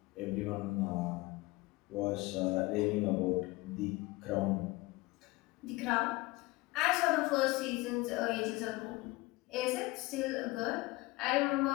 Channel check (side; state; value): right; quieter; 21.7 dB